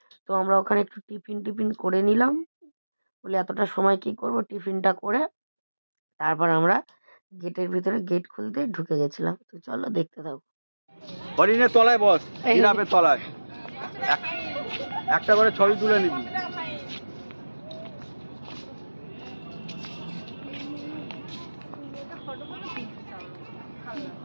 তো আমরা ওখানে একটু টিফিন করে নিলাম, বলে এতটা সময় কি করব, টিফিনটা করে তারপর আমরা গেটের ভিতরে গেট খুলতে ঢুকে গেছিলাম। তো চলো দেখতে থাকো। হরিণের তলায় বস, জিরাফের তলায় একটা করে ছবি তুলে নিবি।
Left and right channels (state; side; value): inverted; both; correlation -1.00